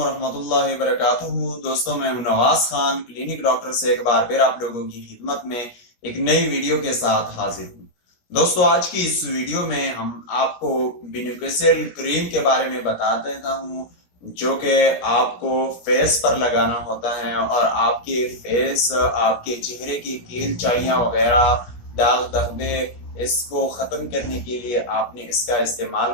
वबरकातुहू। दोस्तों, मैं हूं नवाज खान, क्लिनिक डॉक्टर से एक बार फिर आप लोगों की खिदमत में एक नई वीडियो के साथ हाजिर हूं। दोस्तों, आज की इस वीडियो में हम आपको बेनिफिशियल क्रीम के बारे में बता देता हूं, जो कि आपको फेस पर लगाना होता है और आपके फेस, आपके चेहरे की कील चाइयां वगैरह, दाग धब्बे, इसको खत्म करने के लिए आपने इसका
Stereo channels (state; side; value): late; right; 17 ms